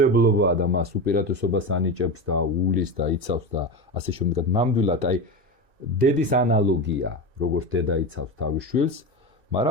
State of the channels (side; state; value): left; late; 2.6 ms